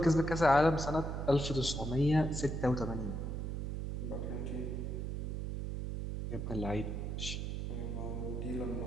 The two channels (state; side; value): noise; right; hum, 3 dB below the sound